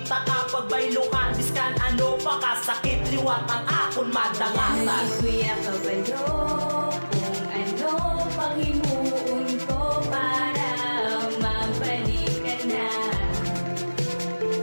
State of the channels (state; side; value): inverted; both; correlation -1.00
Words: ta kapag baylukan diskan ano pa kasakit liwat ang akon madangatan kuya kabalo kung ano panghimuon ko para mabalikan na